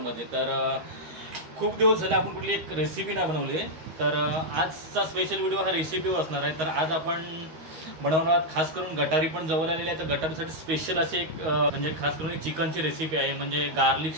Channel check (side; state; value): left; late; 13 ms